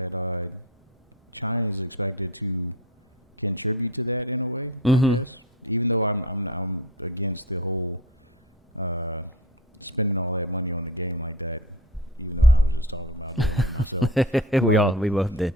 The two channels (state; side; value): normal; both; correlation 0.31